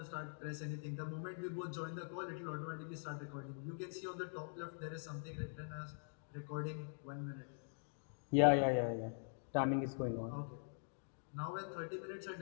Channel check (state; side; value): silent; right; digital silence